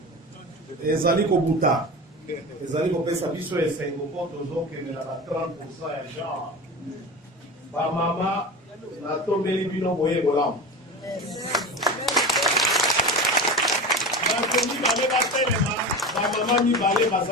ezali kobuta ezali kopesa biso esengo mpo tozokendela na 30% ya genre ba mama natombeli bino boye bolamu bato mibale batelema ba mama mibale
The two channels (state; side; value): normal; both; correlation 0.28